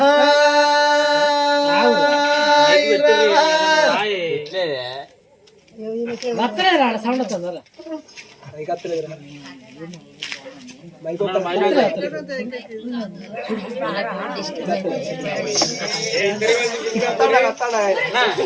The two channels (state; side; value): identical; both; correlation 1.00